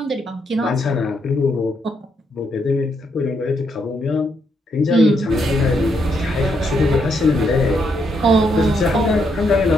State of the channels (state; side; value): normal; both; correlation 0.77